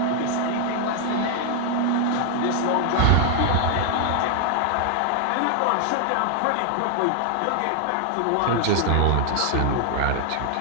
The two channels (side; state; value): both; different; correlation 0.00